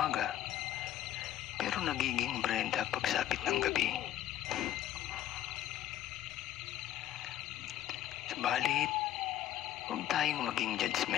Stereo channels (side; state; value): right; quieter; 12.4 dB